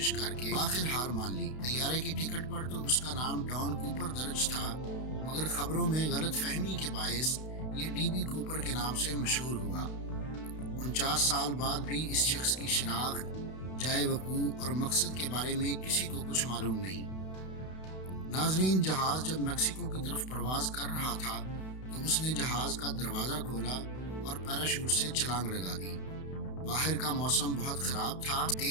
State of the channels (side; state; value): right; late; 32 ms